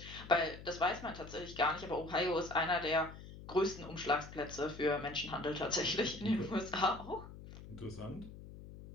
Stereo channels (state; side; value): noise; left; hum, 14 dB below the sound